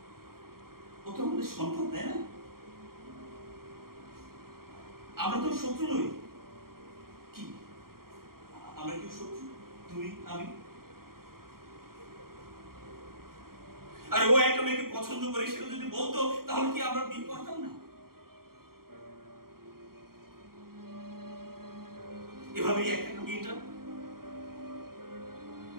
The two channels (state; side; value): late; left; 0.93 ms